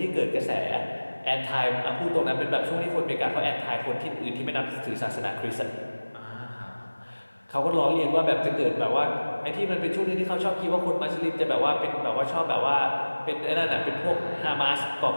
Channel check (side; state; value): both; inverted; correlation -1.00